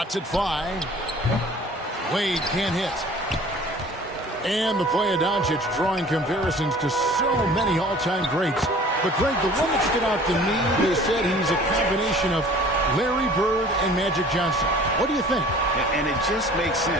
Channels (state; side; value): normal; both; correlation 0.48